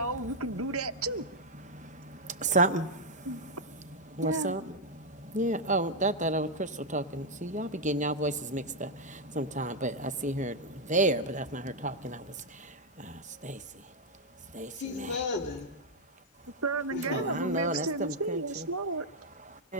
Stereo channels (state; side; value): normal; both; correlation 0.00